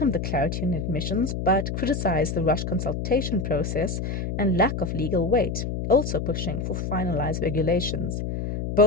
the clarity on admissions, but criticized the rushed consultation process and lack of legal weight, also pushing for finalized regulations.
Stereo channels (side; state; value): left; noise; hum, 3 dB below the sound